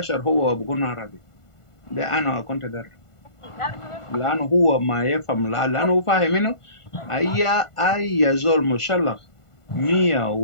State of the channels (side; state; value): right; late; 1.5 ms